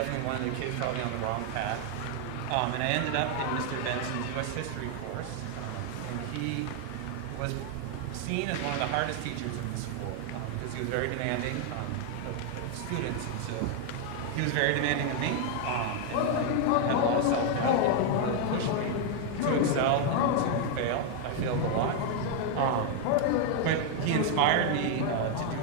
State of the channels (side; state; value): both; different; correlation 0.00